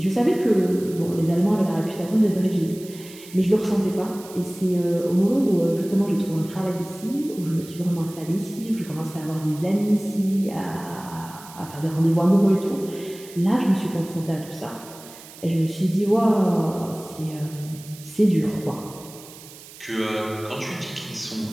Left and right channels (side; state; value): right; noise; hiss, 18 dB below the sound